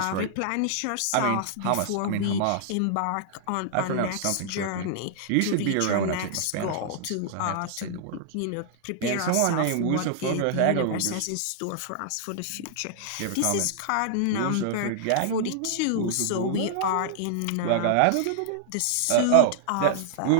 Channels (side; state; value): both; different; correlation -0.01